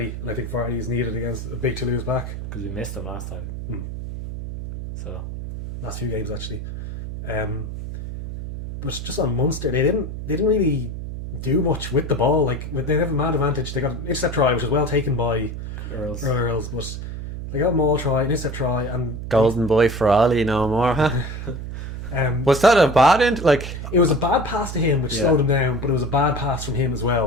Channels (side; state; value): right; noise; hum, 6 dB below the sound